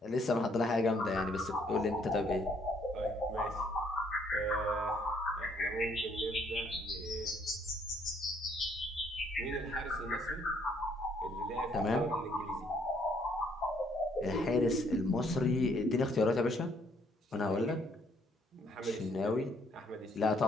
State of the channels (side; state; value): both; normal; correlation 0.67